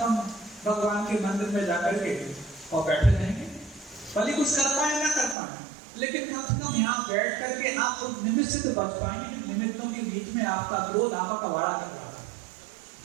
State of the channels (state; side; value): drops out; left; at 5.4 s